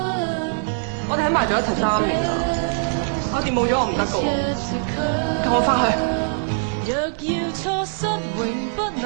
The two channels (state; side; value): silent; left; 63 dB below the other